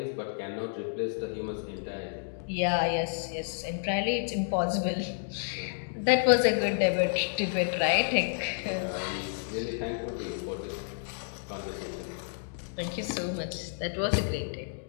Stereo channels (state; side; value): silent; right; digital silence